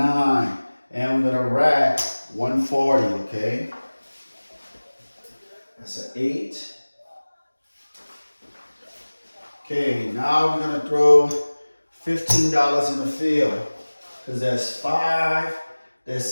And we're going to rack 140, okay? That's an 8. Okay, now we're going to throw $15 in the field. Because that's 5, that's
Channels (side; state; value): both; inverted; correlation -1.00